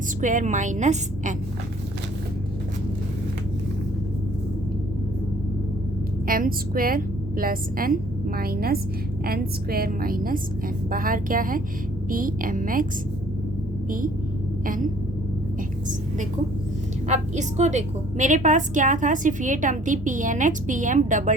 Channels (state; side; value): normal; both; correlation 0.57